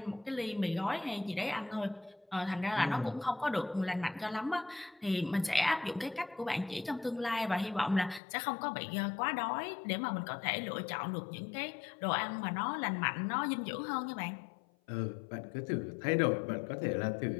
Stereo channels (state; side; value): drops out; right; at 8.2 s